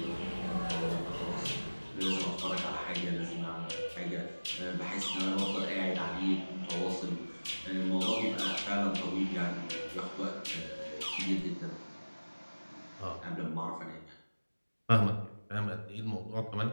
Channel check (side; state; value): both; inverted; correlation -1.00